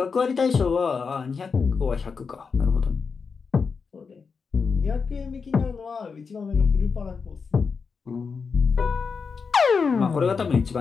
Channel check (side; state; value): right; quieter; 5.3 dB